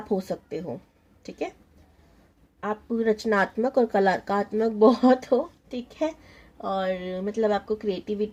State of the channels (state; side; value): identical; both; correlation 1.00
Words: हो सकते हो। ठीक है, आप रचनात्मक और कलात्मक बहुत हो। ठीक है, और मतलब आपको